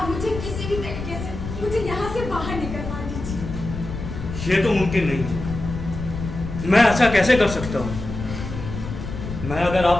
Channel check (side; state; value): left; noise; rumble, 7 dB below the sound